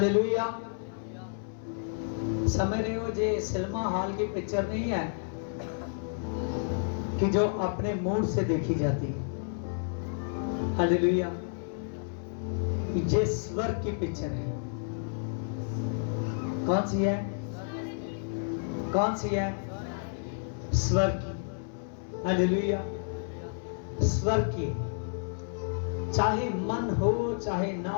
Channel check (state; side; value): silent; right; 57 dB below the other